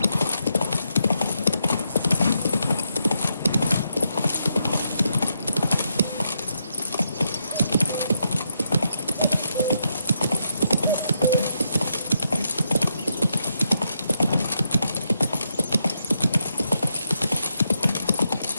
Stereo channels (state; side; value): inverted; both; correlation -0.82